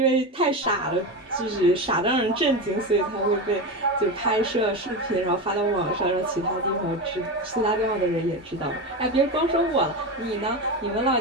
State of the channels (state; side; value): normal; both; correlation 0.19